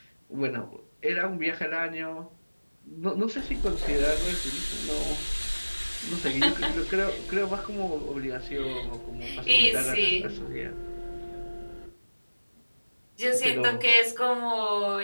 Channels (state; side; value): inverted; both; correlation -1.00